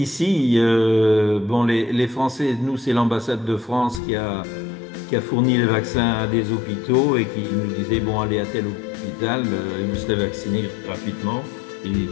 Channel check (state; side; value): drops out; right; at 4.0 s